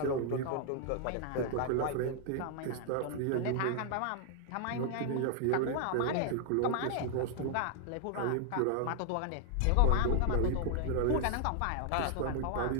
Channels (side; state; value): both; different; correlation -0.01